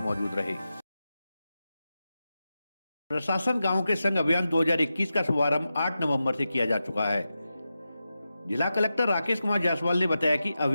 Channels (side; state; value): both; inverted; correlation -0.91